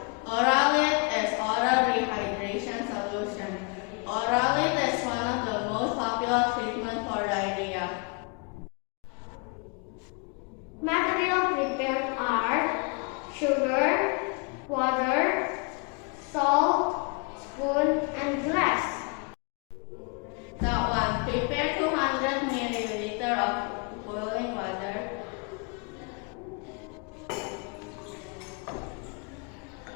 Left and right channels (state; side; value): quieter; right; 33.9 dB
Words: Oralite is oral rehydration solution. Oralite is one of the most popular treatments for diarrhea. Materials prepared are sugar, water, salt, spoon, and glass. Step 1. Prepare 200 ml of boiling water.